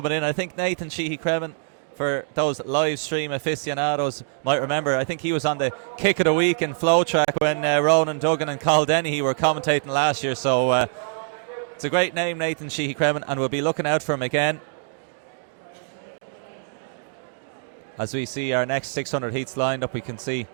in. I think Nathan Sheehy-Cremin, for those live stream aficionados, might remember, I think he was on the Kick of the Week in Flow Track when Ronan Duggan and Carl Dennehy were commentating last year. So it's a great name, Nathan Sheehy-Cremin, and we'll be looking out for him again as we see our next 600 heats lined up. We can see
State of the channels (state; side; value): silent; left; digital silence